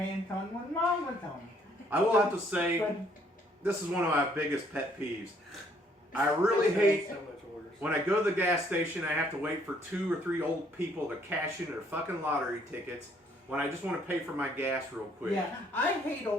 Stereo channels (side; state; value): both; normal; correlation 0.65